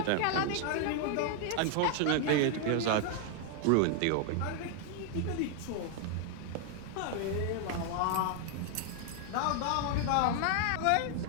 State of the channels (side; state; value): both; different; correlation 0.00